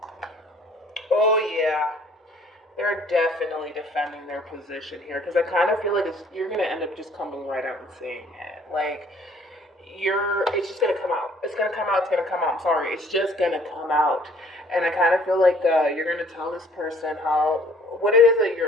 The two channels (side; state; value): both; normal; correlation 0.57